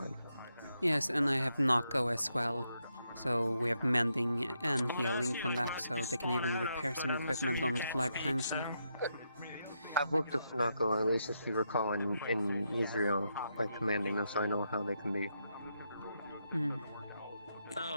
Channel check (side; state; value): both; inverted; correlation -0.81